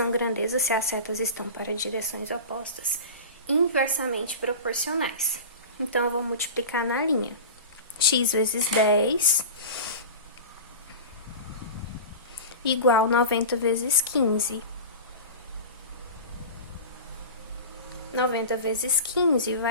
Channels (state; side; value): inverted; both; correlation -0.31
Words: grandezas, se as setas estão para direções opostas, inversamente proporcionais. Então, eu vou multiplicar na linha. X vezes 10 igual 90 vezes 15. 90 vezes 15